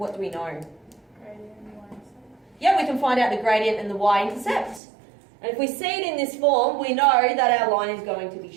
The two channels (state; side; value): drops out; left; at 4.8 s